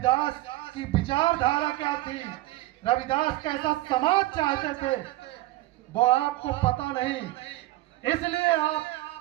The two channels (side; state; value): left; quieter; 17.9 dB